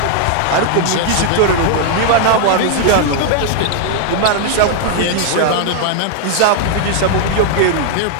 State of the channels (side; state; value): both; different; correlation 0.00